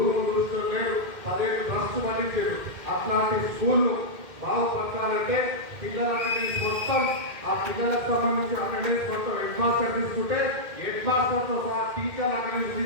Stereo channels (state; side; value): late; left; 2.1 ms